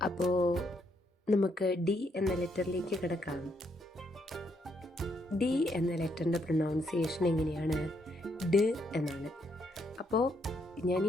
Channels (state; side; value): normal; both; correlation 0.75